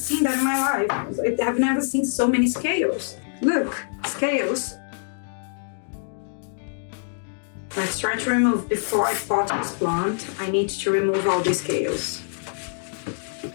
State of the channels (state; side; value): silent; right; digital silence